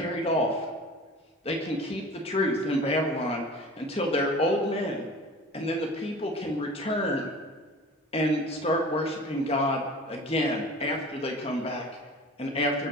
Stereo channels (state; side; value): normal; both; correlation 0.40